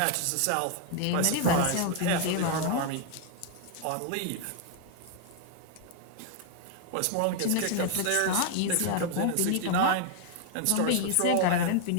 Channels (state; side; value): different; both; correlation 0.00